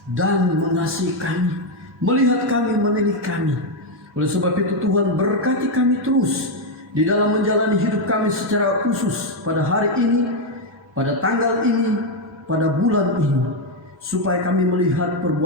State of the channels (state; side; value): normal; both; correlation 0.03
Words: dan mengasihi kami, melihat kami, menilik kami. Oleh sebab itu Tuhan berkati kami terus di dalam menjalani hidup kami secara khusus pada hari ini, pada tanggal ini, pada bulan ini, supaya kami melihat